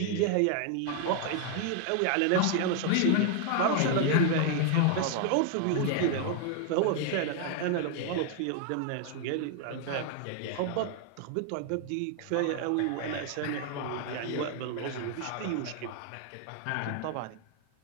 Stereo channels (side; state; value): both; different; correlation 0.00